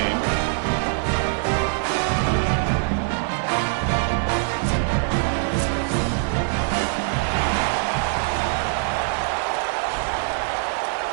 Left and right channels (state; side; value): silent; left; 63 dB below the other